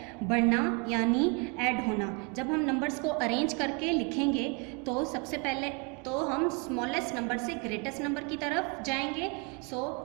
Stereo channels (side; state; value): left; quieter; 32.3 dB